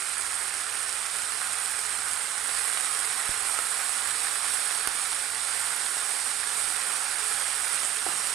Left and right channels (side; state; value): left; quieter; 11.5 dB